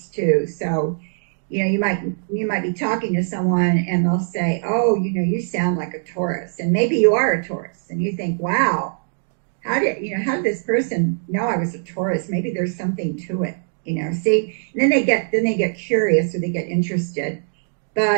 too. So, you might be talking to someone and they'll say, "Oh, you sound like a Taurus," and maybe you are a Taurus, and you think, "Wow, how did this person know I was a Taurus? Maybe there's something to it." See, and then they get curious or they get interested.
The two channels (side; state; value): left; silent; digital silence